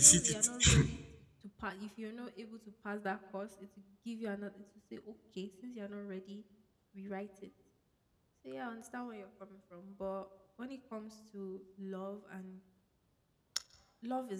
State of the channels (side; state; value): both; identical; correlation 1.00